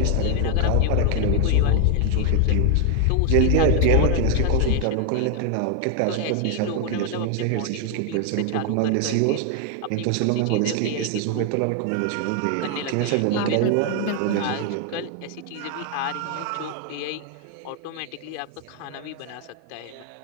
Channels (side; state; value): both; different; correlation 0.00